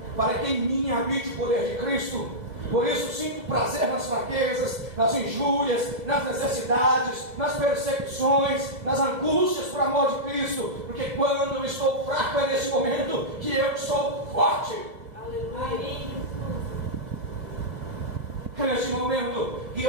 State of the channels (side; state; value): left; late; 2.0 ms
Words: para que em mim habite o poder de Cristo. Por isso sinto prazer nas fraquezas, nas injúrias, nas necessidades, nas perseguições, nas angústias por amor de Cristo. Porque quando eu estou fraco é nesse momento que eu sou forte. Aleluia. É nesse momento que